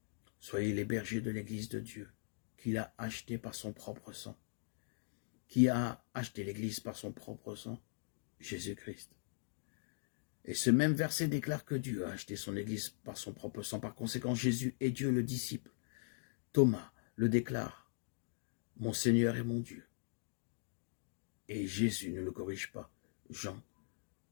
Soyez les bergers de l'Église de Dieu, qu'il a acheté par son propre sang. Qui a acheté l'Église par son propre sang? Jésus-Christ. Et ce même verset déclare que Dieu a acheté son Église par son propre sang. Par conséquent, Jésus est Dieu le disciple. Thomas le déclare, « Mon Seigneur et mon Dieu ». Et Jésus ne le corrige pas. Jean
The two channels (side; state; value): right; silent; digital silence